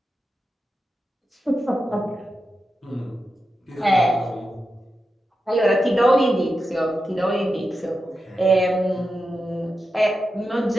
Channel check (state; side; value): normal; both; correlation 0.90